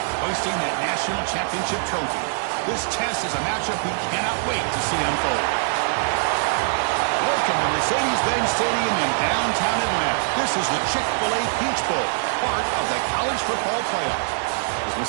hoisting that national championship trophy. This test is a matchup we cannot wait to see unfold. Welcome to Mercedes-Benz Stadium in downtown Atlanta. This is the Chick-fil-A Peach Bowl, part of the college football playoff. As we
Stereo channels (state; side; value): silent; left; 63 dB below the other